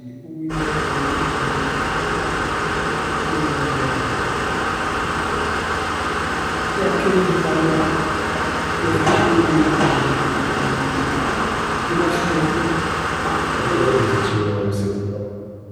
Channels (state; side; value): identical; both; correlation 1.00